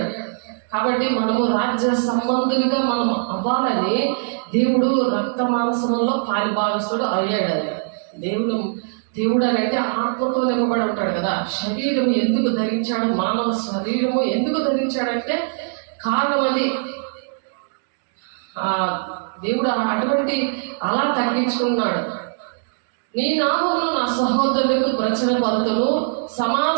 కాబట్టి మనము రాజ్య సంబంధులుగా మనం అవ్వాలని దేవుడు రక్త మాంసంలో పాలుభాగస్తుడు అయ్యాడు. దేవుడు అని అంటే ఆత్మతో నింపబడి ఉంటాడు కదా. శరీరం ఎందుకు ధరించాడు? మానవ శరీరము ఎందుకు ధరించాడంటే కారణం అది. దేవుడు అటువంటి అలా తగ్గించుకున్నాడు. నీ నామమును నా సహోదరులకు ప్రచురపరుతును,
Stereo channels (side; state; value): left; silent; digital silence